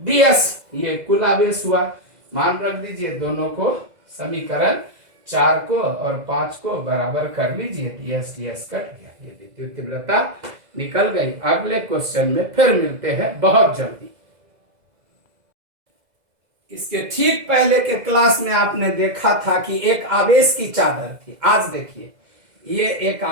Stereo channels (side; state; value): left; late; 2.0 ms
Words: ये कुल आवेश हुआ। मान रख दीजिए, दोनों को समीकरण 4 को और 5 को बराबर कर लीजिए, ds ds कट गया, ये विद्युत तीव्रता निकल गई। अगले क्वेश्चन में फिर मिलते हैं बहुत जल्दी। इसके ठीक पहले के क्लास में आपने देखा था कि एक आवेश की चादर थी। आज देखिए, ये एक